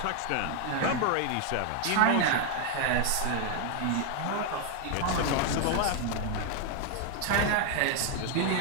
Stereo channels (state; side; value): different; both; correlation 0.00